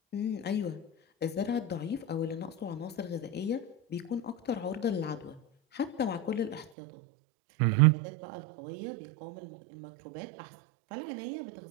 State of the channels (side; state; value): left; drops out; at 6.7 s